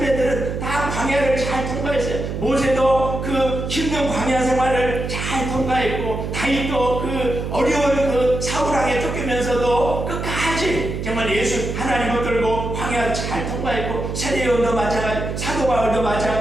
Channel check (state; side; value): noise; right; hum, 4 dB below the sound